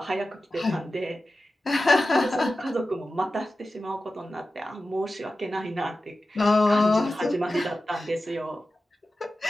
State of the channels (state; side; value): normal; both; correlation 0.94